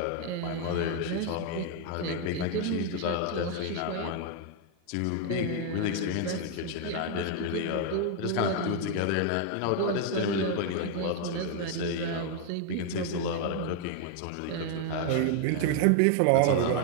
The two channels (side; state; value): both; different; correlation 0.00